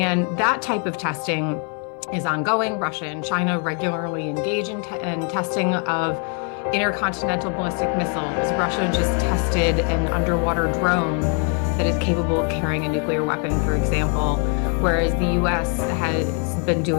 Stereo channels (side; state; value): right; quieter; 39.4 dB